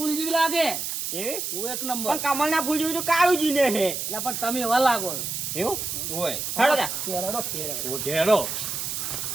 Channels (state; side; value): noise; right; hiss, 3 dB below the sound